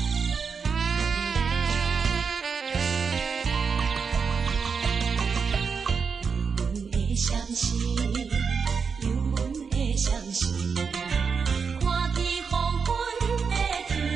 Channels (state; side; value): quieter; left; 5.7 dB